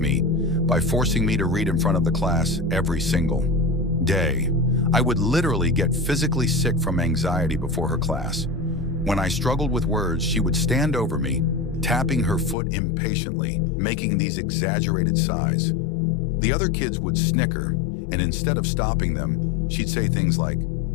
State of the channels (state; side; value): drops out; right; at 12.6 s